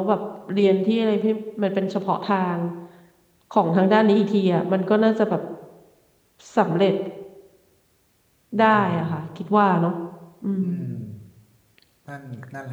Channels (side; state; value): both; identical; correlation 1.00